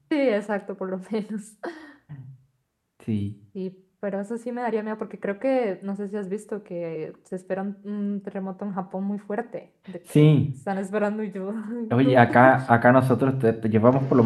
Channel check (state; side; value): identical; both; correlation 1.00